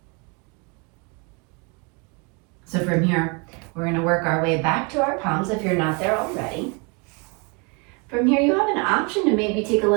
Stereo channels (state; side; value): quieter; left; 31.7 dB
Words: So from here, we're going to work our way back to our palms if you're not there already. From here, you have an option to maybe take a